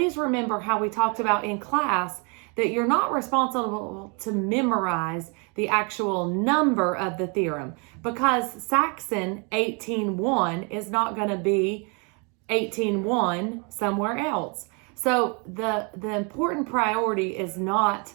remember how we talked about in class that you're not responsible to memorize the actual number of the theorem, because Saxon 18.1 is not going to be 18.1 somewhere else. So the important priority is not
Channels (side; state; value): left; quieter; 33.9 dB